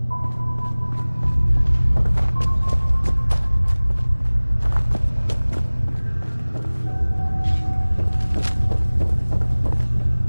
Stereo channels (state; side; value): inverted; both; correlation -1.00